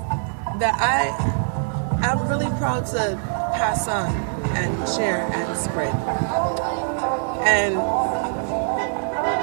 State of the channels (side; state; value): left; silent; digital silence